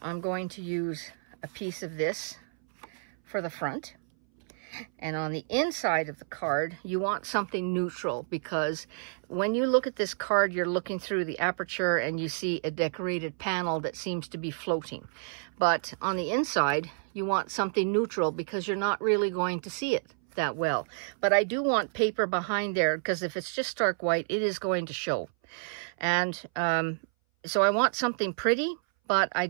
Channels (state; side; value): silent; left; 58 dB below the other